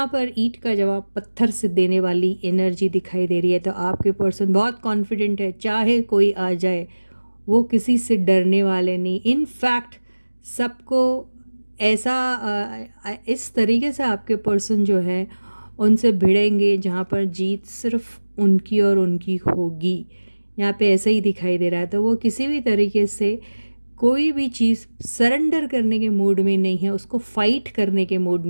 पर ईंट का जवाब पत्थर से देने वाली एनर्जी दिखाई दे रही है। तो आपके पर्सन बहुत कॉन्फिडेंट है, चाहे कोई आ जाए वो किसी से डरने वाले नहीं। इन फैक्ट सबको ऐसा इस तरीके से आपके पर्सन जो है उनसे भिड़ेंगे जहाँ पर जीत सिर्फ उनकी और उनकी होगी। यहाँ पे ऐसा ही दिखाई दे रहा है। तो वो किसी भी तरीके से कोई भी चीज़ सरेंडर करने के मूड में नहीं है, उसको फाइट करने के मूड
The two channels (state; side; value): inverted; both; correlation -1.00